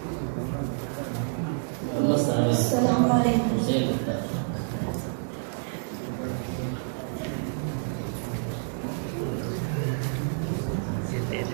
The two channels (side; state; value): left; silent; digital silence